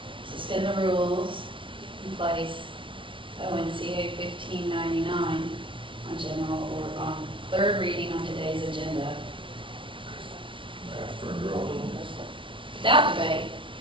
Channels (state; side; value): late; left; 0.25 ms